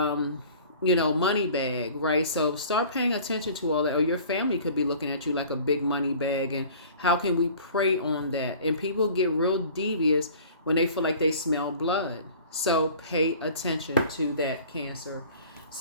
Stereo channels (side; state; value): both; inverted; correlation -0.47